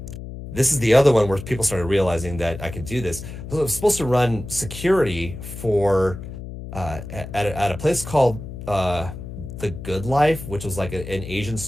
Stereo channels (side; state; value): left; noise; hum, 10 dB below the sound